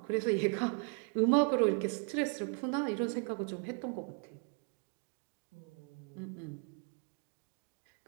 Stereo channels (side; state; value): left; quieter; 39.0 dB